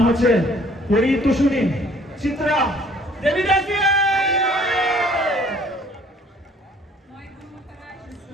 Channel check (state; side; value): normal; both; correlation 0.58